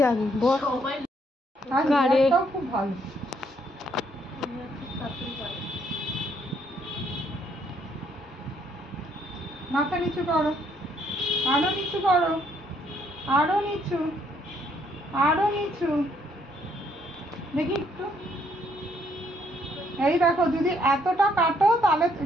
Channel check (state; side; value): normal; both; correlation 0.69